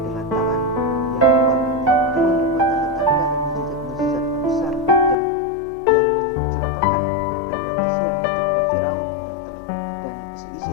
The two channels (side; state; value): right; drops out; at 5.2 s